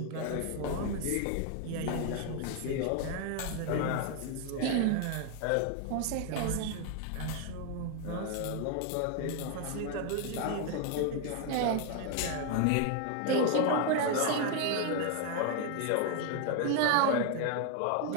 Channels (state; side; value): different; both; correlation 0.01